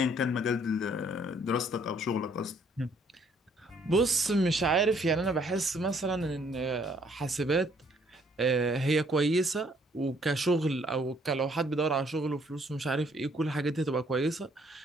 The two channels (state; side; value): normal; both; correlation 0.65